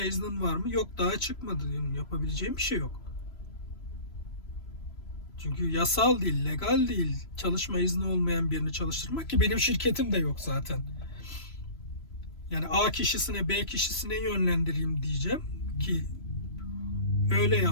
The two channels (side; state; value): right; late; 3.0 ms